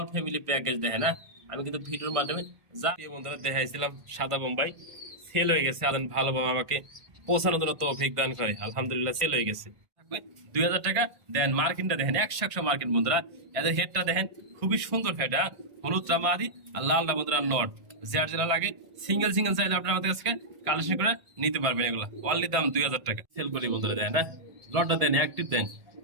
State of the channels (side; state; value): left; late; 1.5 ms